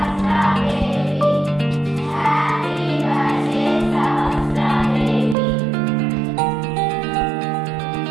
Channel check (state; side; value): drops out; left; at 5.4 s